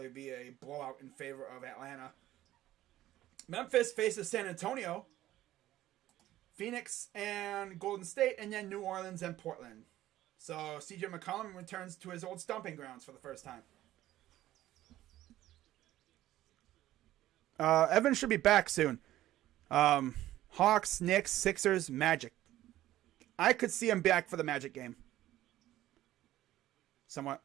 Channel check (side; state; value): left; quieter; 14.3 dB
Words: be a blowout in favor of Atlanta. Memphis faces San Antonio. Phoenix and Golden State, and then New Orleans and Portland. So CJ McCollum returns to his old stomping grounds for the first time. Evans should be back soon. Hawks, Knicks, Sixers, Magic. I could see him back for the Magic game.